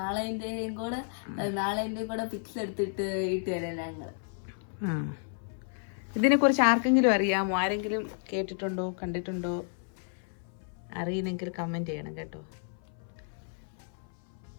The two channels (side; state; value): right; silent; 57 dB below the other